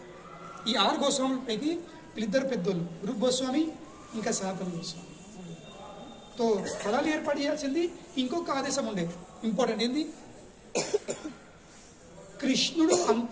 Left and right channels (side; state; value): both; identical; correlation 1.00